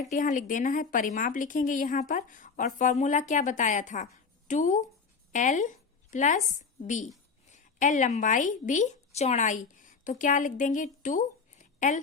यहाँ लिख देना है, परिमाप लिखेंगे यहाँ पर, और फॉर्मूला क्या बताया था, 2l + b, l लंबाई b चौड़ाई, तो क्या लिख देंगे 2l,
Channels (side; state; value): right; quieter; 5.1 dB